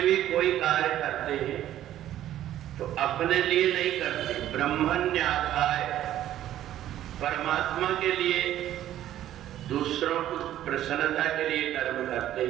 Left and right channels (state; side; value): quieter; left; 12.5 dB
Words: भी कोई कार्य करते हैं तो अपने लिए नहीं करते, ब्रह्मण्याधाय परमात्मा के लिए, दूसरों की प्रसन्नता के लिए कर्म करते